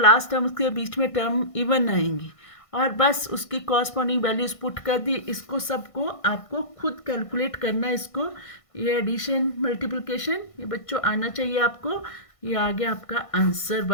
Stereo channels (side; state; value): right; late; 1.6 ms